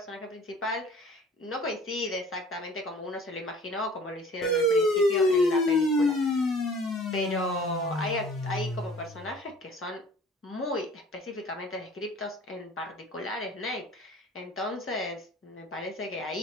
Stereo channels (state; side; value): normal; both; correlation 0.48